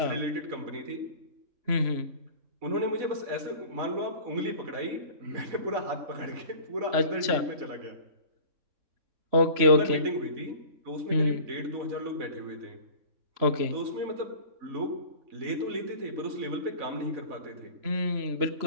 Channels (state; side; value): late; left; 3.0 ms